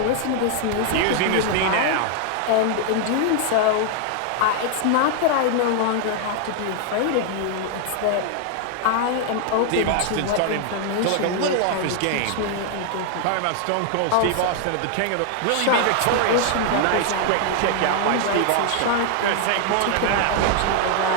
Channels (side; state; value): both; different; correlation 0.00